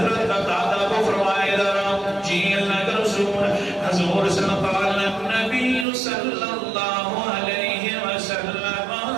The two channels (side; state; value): left; drops out; at 5.9 s